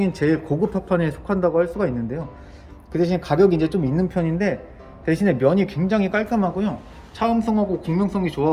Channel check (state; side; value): identical; both; correlation 1.00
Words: 제일 고급 합판에 속한다고 할 수가 있는데요. 그 대신에 가격이 이제 좀 있는 편인데, 대신에 면이 굉장히 깔끔하고요. 차음성하고 공명성이